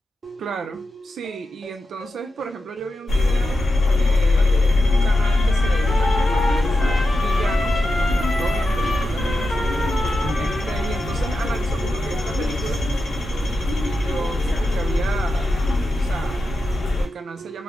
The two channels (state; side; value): normal; both; correlation 0.90